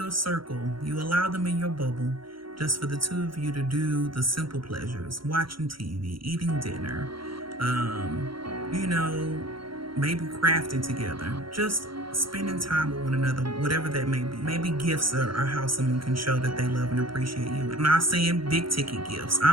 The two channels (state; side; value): late; left; 0.73 ms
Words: circle. You allow them in your bubble just for the two of you to do the simple pleasures, watching TV, eating dinner, maybe crafting together, just spending time with one another, whatever that may be. Maybe gifts are how someone can show that they love and appreciate you. I'm not saying big ticket gifts.